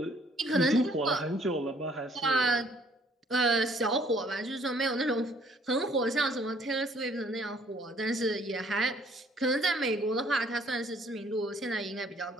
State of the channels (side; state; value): both; normal; correlation 0.61